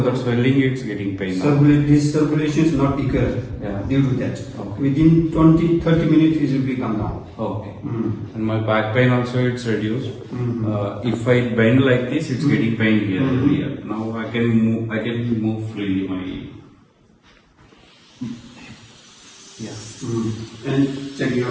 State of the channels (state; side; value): identical; both; correlation 1.00